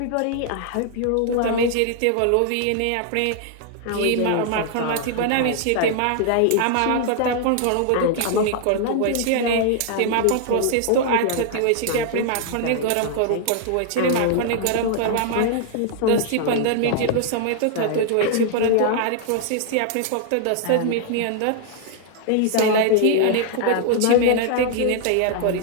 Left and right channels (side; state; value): both; different; correlation 0.00